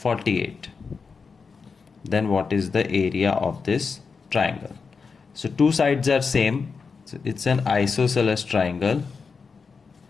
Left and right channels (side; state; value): right; quieter; 5.1 dB